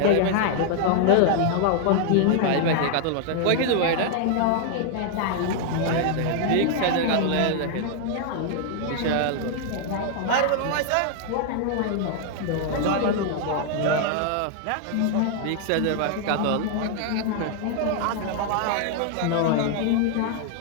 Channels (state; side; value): different; both; correlation 0.00